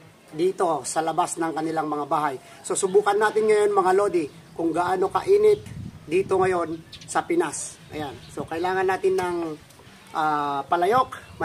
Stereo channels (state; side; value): identical; both; correlation 1.00